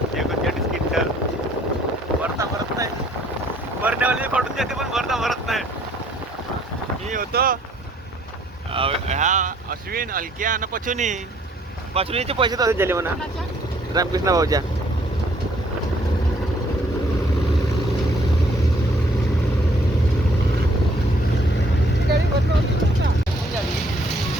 39 क्विंटल भरता भरत नाही, भरण्यावाली पडून जाते पण भरता भरत नाही। मी होतो ह्या अश्विन अलक्या आणि पचुनीचे पैसे तसेच झाले म्हणा रामकृष्ण भाऊच्या।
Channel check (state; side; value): normal; both; correlation 0.63